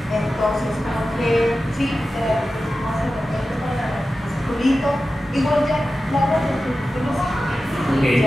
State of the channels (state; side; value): normal; both; correlation 0.94